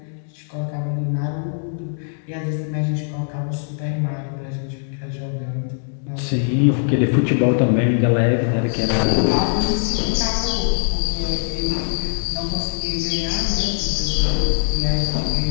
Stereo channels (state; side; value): silent; right; digital silence